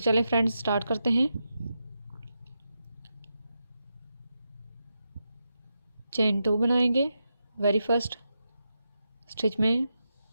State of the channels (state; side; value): inverted; both; correlation -0.86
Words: फ्रेंड्स, स्टार्ट करते हैं। चेन 2 बनाएंगे। वेरी फर्स्ट स्टिच में